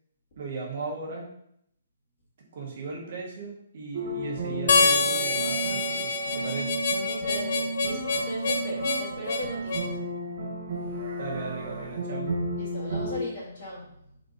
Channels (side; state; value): both; inverted; correlation -0.65